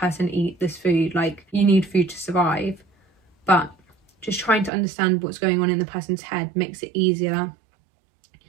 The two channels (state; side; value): drops out; left; at 4.7 s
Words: eat this food? Like, you need food to survive. But just trying to understand what's going on in the person's head makes it easier